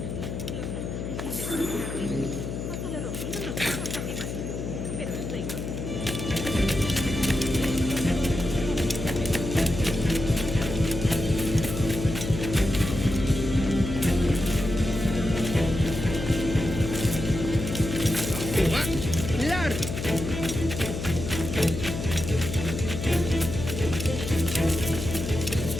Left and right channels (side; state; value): left; noise; hum, 5 dB below the sound